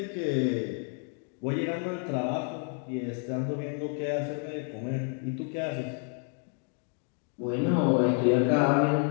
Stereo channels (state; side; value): quieter; right; 38.6 dB